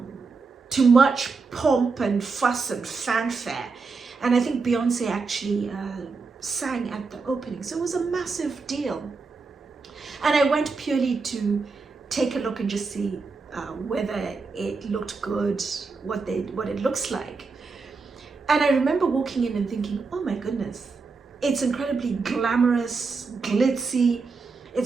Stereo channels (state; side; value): quieter; left; 4.4 dB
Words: to much pomp and fuss and fanfare. And I think Beyonce actually sang at the opening. So it was a massive deal. And I went purely to take a look and just see whether it looked good, what it looks like. And I remember walking in and thinking, oh my goodness, it's incredibly glamorous, glitzy.